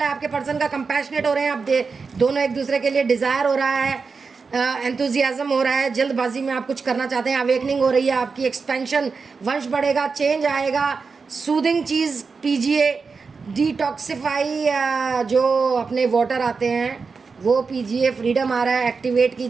है आपके पर्सन का, कंपैशनेट हो रहे हैं आप दोनों एक दूसरे के लिए, डिज़ायर हो रहा है, एंथुजियाज्म हो रहा है, जल्दबाजी में आप कुछ करना चाहते हैं, अवेकनिंग हो रही है आपकी, एक्सपेंशन, वंश बढ़ेगा, चेंज आएगा। सूदिंग चीज़ पीजिए, डिटॉक्सिफाई जो अपने वाटर आते हैं वो पीजिए, फ्रीडम आ रहा है, एक्टिवेट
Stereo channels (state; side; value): quieter; left; 4.9 dB